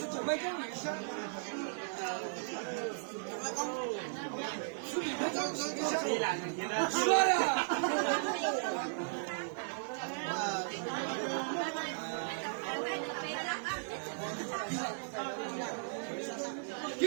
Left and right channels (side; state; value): left; silent; 54 dB below the other